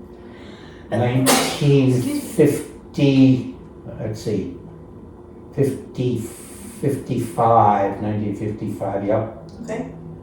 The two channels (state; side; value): identical; both; correlation 1.00